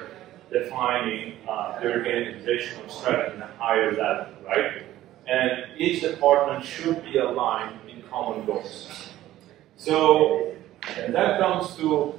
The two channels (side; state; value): left; quieter; 14.2 dB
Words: defining the organizational strategy in a higher level, right? And each department should be aligned in common goals. So, and that comes to